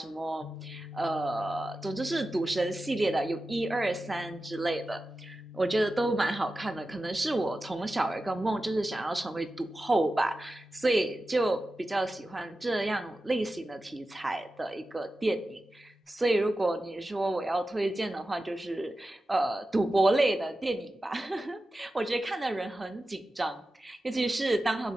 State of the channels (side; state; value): both; normal; correlation 0.93